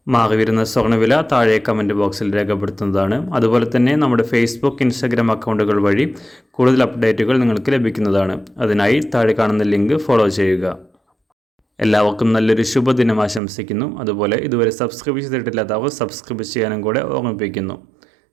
മാറി വരുന്ന സ്വർണ്ണവില താഴെ കമൻറ്റ് ബോക്സിൽ രേഖപ്പെടുത്തുന്നതാണ്. അതുപോലെ തന്നെ നമ്മുടെ ഫേസ്ബുക്ക്, ഇൻസ്റ്റാഗ്രാം അക്കൗണ്ടുകൾ വഴി കൂടുതൽ അപ്ഡേറ്റുകൾ നിങ്ങൾക്ക് ലഭിക്കുന്നതാണ്. അതിനായി താഴെ കാണുന്ന ലിങ്ക് ഫോളോ ചെയ്യുക. എല്ലാവർക്കും നല്ലൊരു ശുഭദിനം ആശംസിക്കുന്നു. അതുപോലെ ഇതുവരെ സബ്സ്ക്രൈബ് ചെയ്തിട്ടില്ലാത്തവർ സബ്സ്ക്രൈബ് ചെയ്യാനും കൂടെ ഓർമ്മിപ്പിക്കുന്നു.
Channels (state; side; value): drops out; left; at 13.4 s